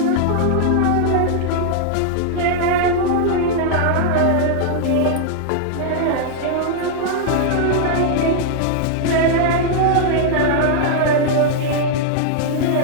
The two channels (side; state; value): both; different; correlation -0.01